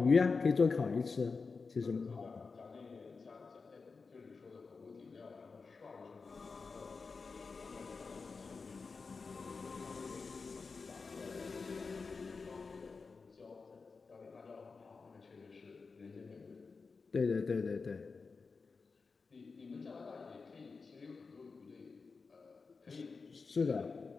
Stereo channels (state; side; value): quieter; right; 4.6 dB